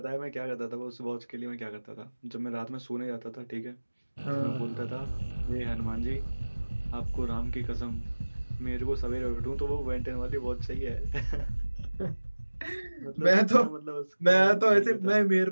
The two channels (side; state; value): both; inverted; correlation -1.00